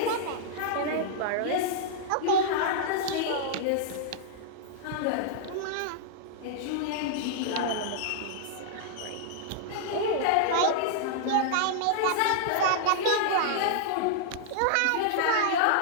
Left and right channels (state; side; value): different; both; correlation -0.01